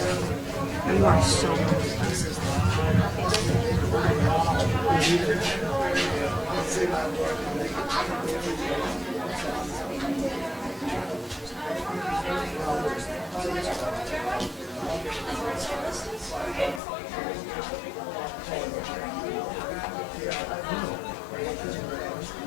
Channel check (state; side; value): drops out; right; at 16.8 s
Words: You are so